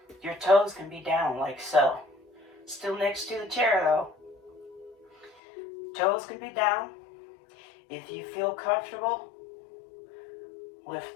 Your toes can be down like so. Still next to the chair though. Toes can be down. If you feel comfortable, lift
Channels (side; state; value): right; drops out; at 5.4 s